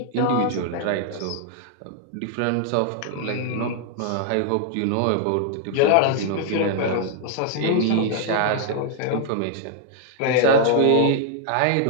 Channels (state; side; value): different; both; correlation -0.01